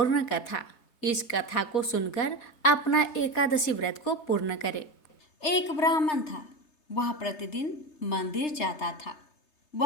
कथा। इस कथा को सुनकर अपना एकादशी व्रत को पूर्ण करें। एक ब्राह्मण था। वह प्रतिदिन मंदिर जाता था।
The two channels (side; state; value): right; late; 3.3 ms